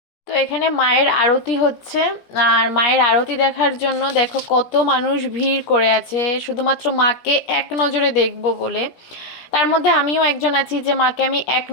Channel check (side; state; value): right; late; 17 ms